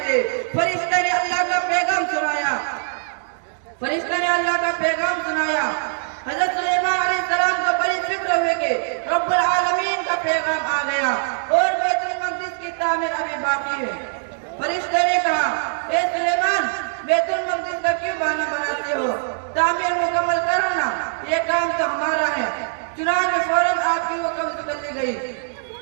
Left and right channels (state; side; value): silent; left; digital silence